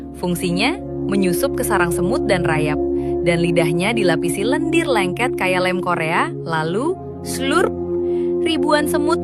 Fungsinya, menyusup ke sarang semut dan rayap. Dan lidahnya dilapisi lendir lengket kayak lem Korea, lalu slurp. Ribuan semut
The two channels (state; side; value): identical; both; correlation 1.00